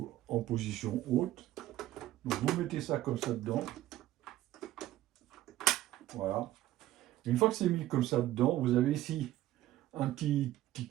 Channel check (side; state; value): left; quieter; 14.6 dB